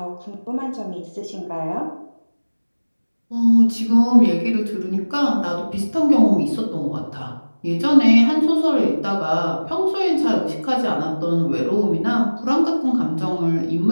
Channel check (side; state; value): both; inverted; correlation -1.00